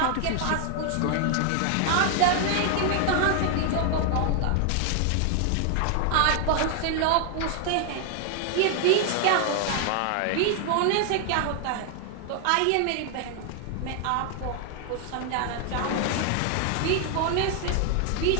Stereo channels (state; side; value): different; both; correlation 0.00